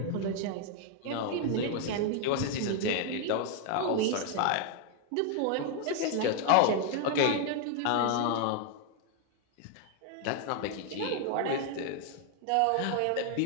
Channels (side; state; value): both; different; correlation 0.00